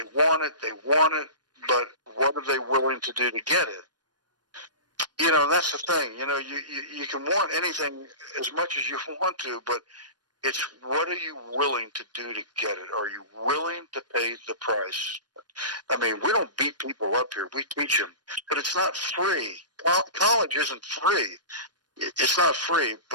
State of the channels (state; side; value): late; left; 0.69 ms